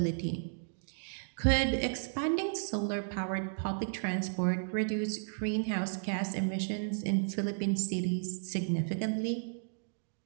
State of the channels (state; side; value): silent; left; digital silence